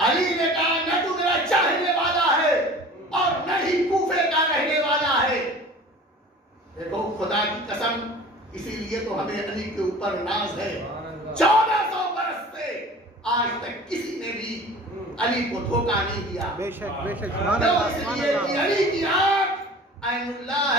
علی نے کہا نہ تو میرا چاہنے والا ہے اور نہ ہی کوفے کا رہنے والا ہے. دیکھو خدا کی قسم اسی لیے تو ہمیں علی کے اوپر ناز ہے. 1400 برس سے آج تک کسی نے بھی علی کو دھوکہ نہیں دیا. بے شک بے شک. اس لیے کہ علی کی آنکھ عین اللہ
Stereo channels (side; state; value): both; normal; correlation 0.42